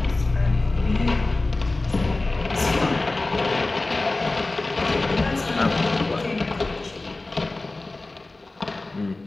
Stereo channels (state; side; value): quieter; right; 3.1 dB